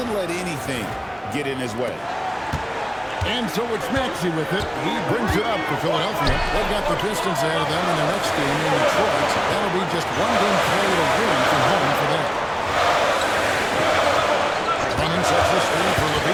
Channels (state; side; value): identical; both; correlation 1.00